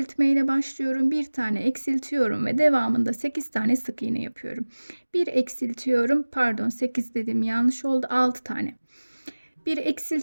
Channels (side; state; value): both; inverted; correlation -1.00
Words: ile başlıyorum. Bir tane eksiltiyorum ve devamında 8 tane sık iğne yapıyorum. Bir eksiltiyorum, pardon 8 dedim yanlış oldu, 6 tane. Bir